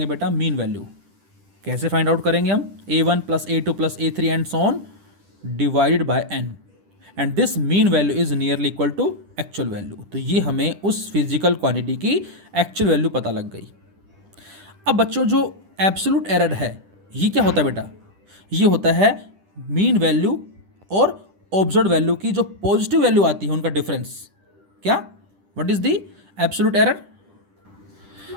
बेटा मीन वैल्यू। कैसे फाइंड आउट करेंगे हम, a1 plus a2 plus a3 and so on divided by n, and this mean value is nearly equal to actual value. तो ये हमें उस फिजिकल क्वांटिटी की एक्चुअल वैल्यू पता लग गई। अब बच्चों जो एब्सोल्यूट एरर है ये क्या होता है बेटा, ये होता है मीन वैल्यू और ऑब्जर्व्ड वैल्यू की जो पॉजिटिव वैल्यू आती है उनका डिफरेंस। क्या, what is the absolute error,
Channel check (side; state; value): left; late; 10 ms